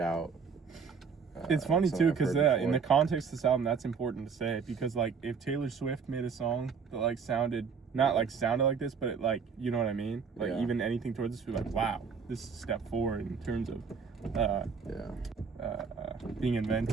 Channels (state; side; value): quieter; left; 5.9 dB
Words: It's funny something too, I've because heard in the before. context of this album, that's important to say, because like if Taylor Swift made a song that like sounded not like sounded like this, but it like, you know what I mean? Like Yeah. even anything towards this, we're like, wow, this is a step forward in terms of being